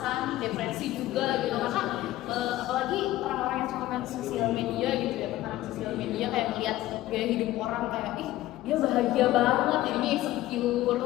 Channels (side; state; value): right; quieter; 15.5 dB